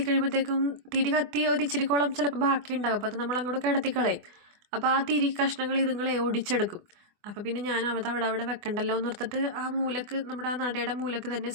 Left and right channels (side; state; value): left; late; 24 ms